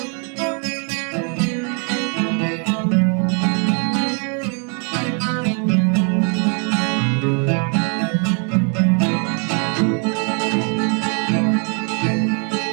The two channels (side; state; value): left; quieter; 37.8 dB